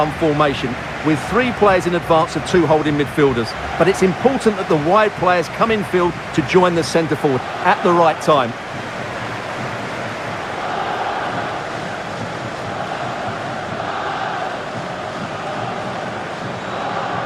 formation with 3 players in advance of 2 holding midfielders. But it's important that the wide players come in field to join the centre forward at the right time.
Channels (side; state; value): both; identical; correlation 1.00